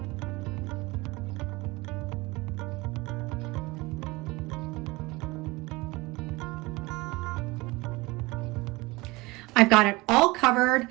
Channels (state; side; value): quieter; left; 22.7 dB